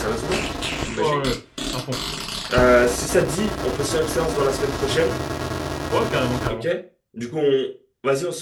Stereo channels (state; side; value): identical; both; correlation 1.00